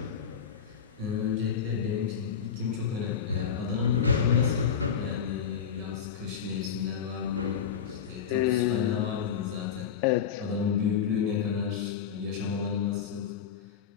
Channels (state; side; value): quieter; right; 7.5 dB